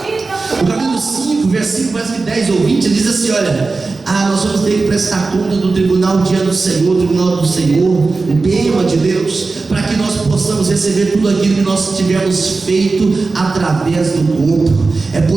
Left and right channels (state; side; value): quieter; left; 3.9 dB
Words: no capítulo 5, versículo mais que 10 ou 20, ele diz assim: olha, nós vamos ter que prestar conta do tribunal dia do Senhor, o tribunal do Senhor, o bênção de Deus, para que nós possamos receber tudo aquilo que nós tivermos feito através do corpo. É